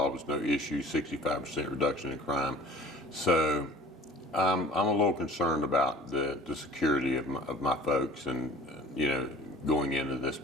no issues, 65% reduction in crime. So I'm a little concerned about the security of my folks and, going into this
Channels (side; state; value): both; normal; correlation 0.46